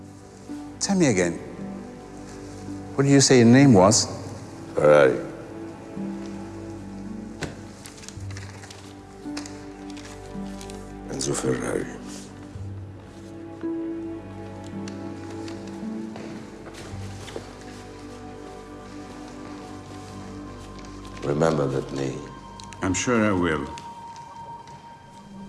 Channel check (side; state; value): both; identical; correlation 1.00